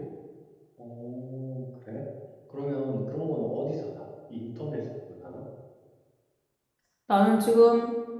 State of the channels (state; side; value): identical; both; correlation 1.00